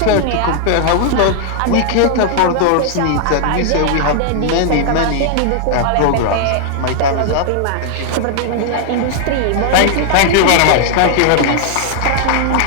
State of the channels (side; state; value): both; different; correlation -0.01